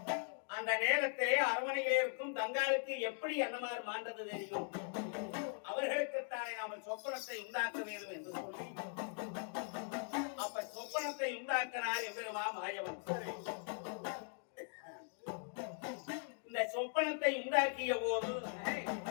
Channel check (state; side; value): silent; right; 51 dB below the other